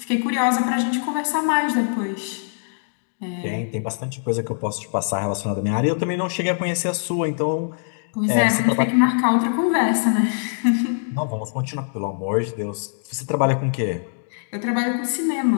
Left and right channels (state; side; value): silent; right; digital silence